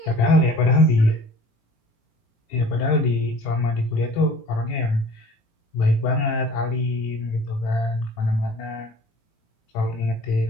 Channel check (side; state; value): right; late; 18 ms